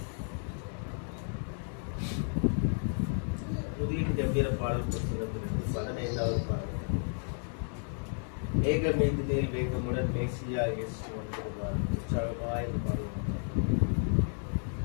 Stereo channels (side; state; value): right; silent; 56 dB below the other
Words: கம்பீர பாடல் புத்தகத்திலிருந்து 15வது பாடல். ஏகமேதினில் வேகமுடன் மேசியா இயேசு வந்திருவார். உற்சாகமாய் இந்த பாடல்.